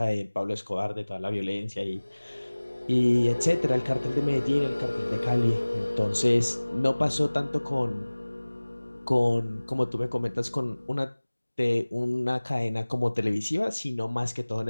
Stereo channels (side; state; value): both; inverted; correlation -1.00